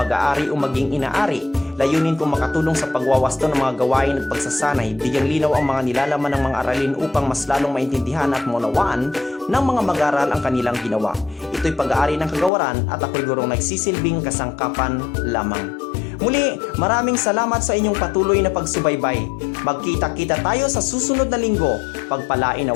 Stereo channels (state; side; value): drops out; right; at 12.5 s